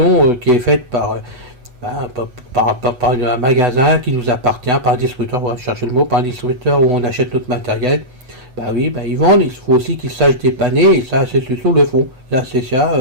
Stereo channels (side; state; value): left; late; 8.1 ms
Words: qui est faite par un magasin qui nous appartient, par un distributeur, on va chercher le mot, par un distributeur où on achète notre matériel. Ils vendent, il faut aussi qu'ils sachent dépanner, et ça, ces solutions le font. Là, c'est